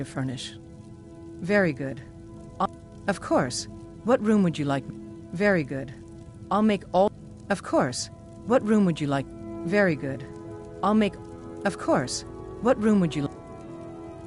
furnish? Very good. Of course. What room would you like? Very good. I'll make all... Of course. What room would you like? Very good. I'll make... Of course. What room would you like?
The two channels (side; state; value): both; identical; correlation 1.00